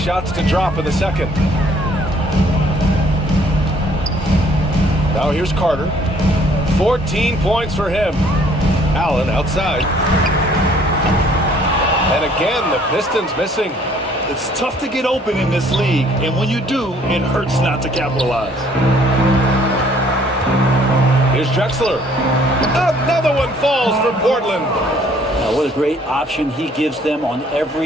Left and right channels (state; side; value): normal; both; correlation 0.60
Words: to drop in the second. Now here's Carter. 14 points for him. Allen outside. And again, the Pistons missing. It's tough to get open in this league, and when you do, it hurts not to capitalize. Here's Drexler. Another one falls for Portland. What a great option he gives them on